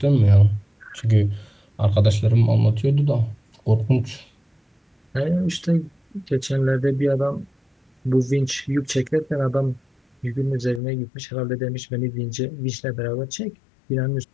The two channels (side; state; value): right; drops out; at 10.8 s